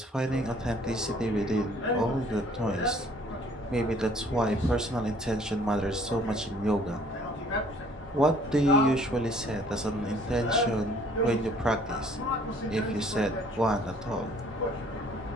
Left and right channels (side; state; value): both; normal; correlation 0.57